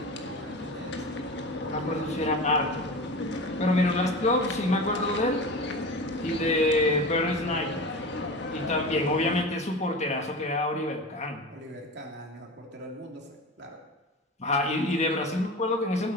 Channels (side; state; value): both; normal; correlation 0.30